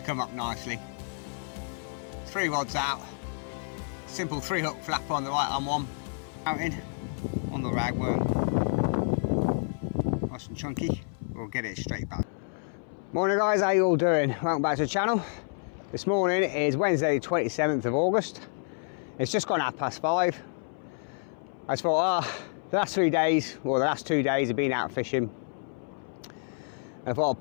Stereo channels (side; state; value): right; silent; 59 dB below the other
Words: come up nicely. 3 rods out, simple 3-hook flapper on the right hand one, mountain on the ragworm. Nice and chunky, we'll get it straight back. Morning guys, how you all doing? Welcome back to the channel. This morning is Wednesday the 27th of August. It's just gone 5:30. I just thought, the last 3 days, or the last 2 days, I've been out fishing. I thought I'll